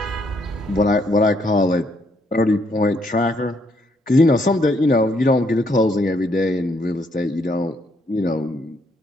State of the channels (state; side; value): normal; both; correlation 0.72